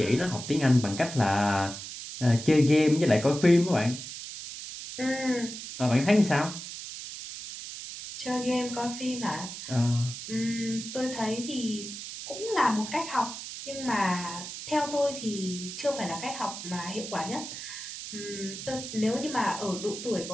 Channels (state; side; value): noise; right; hiss, 9 dB below the sound